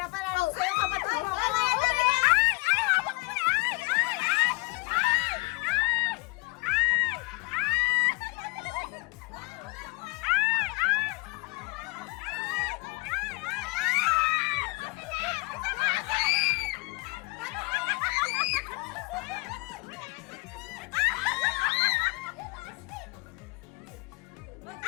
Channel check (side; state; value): right; quieter; 27.3 dB